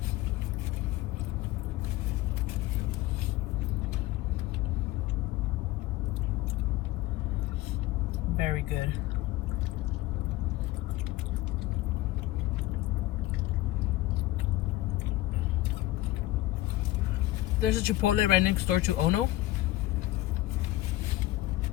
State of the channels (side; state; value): right; quieter; 16.8 dB